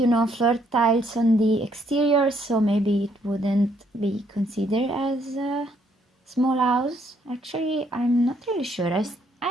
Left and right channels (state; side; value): normal; both; correlation 0.70